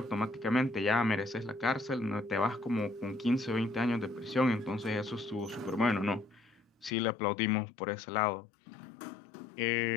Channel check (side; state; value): right; drops out; at 6.9 s